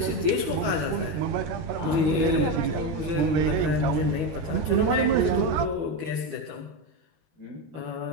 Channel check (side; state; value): left; late; 12 ms